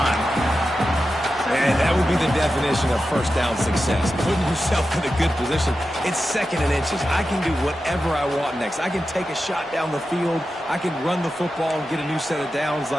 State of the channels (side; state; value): both; normal; correlation 0.91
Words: And that would be the definition of first down success. Putting yourself in a good position. It's second and inches. I can do whatever I want next. I can take a shot down the field. I can run the football and get a new set of downs.